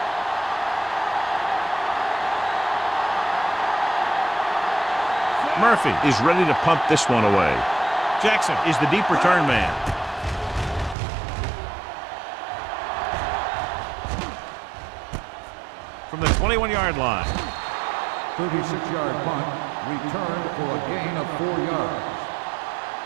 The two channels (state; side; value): drops out; left; at 11.0 s